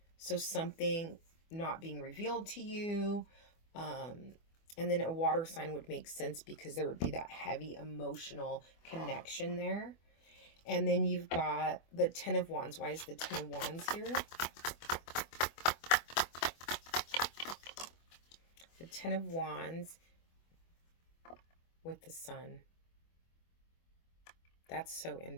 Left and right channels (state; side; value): late; right; 24 ms